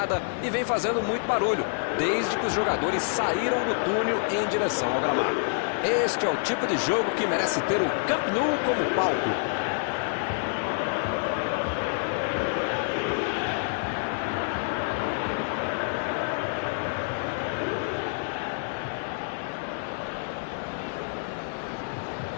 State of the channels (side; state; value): right; silent; digital silence